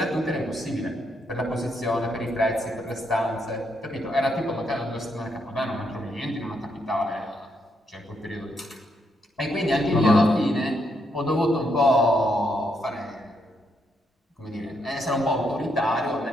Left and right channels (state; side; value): normal; both; correlation 0.77